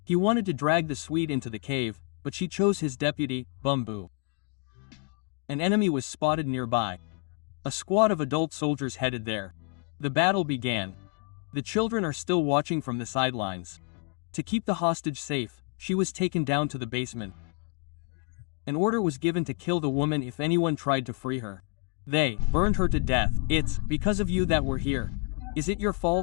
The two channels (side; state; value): right; quieter; 36.2 dB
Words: He wanted to drag the Swede into the cave, but she chose his deputy, Bumbu. An enemy was spotted nearby. A squad of adult soldiers headed there. The battle began. The children are still watching from the sidelines. To keep the hostage safe, she was taken down to the basement. An order was given to kill the woman if anyone tried to free her. They burned her to death. It's because of you that we're here. Is it your